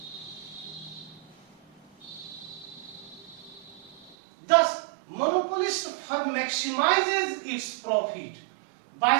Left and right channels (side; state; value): left; drops out; at 4.2 s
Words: Thus, monopolist firm maximizes its profit by